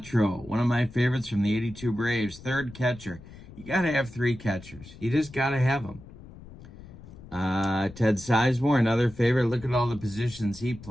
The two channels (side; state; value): left; noise; rumble, 18 dB below the sound